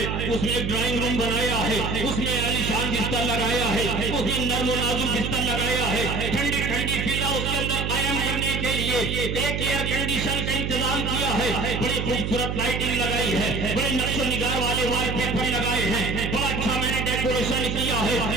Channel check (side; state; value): right; noise; hum, 2 dB below the sound